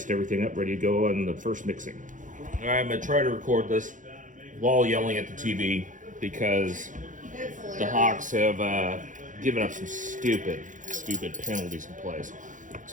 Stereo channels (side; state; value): left; late; 0.37 ms